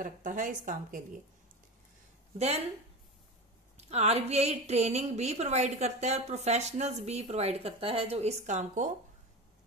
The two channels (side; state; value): both; normal; correlation 0.26